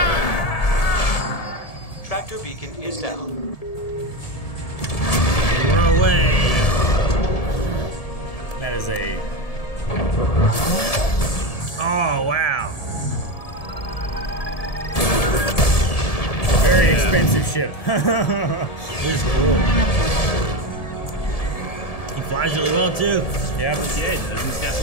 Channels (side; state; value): right; late; 1.7 ms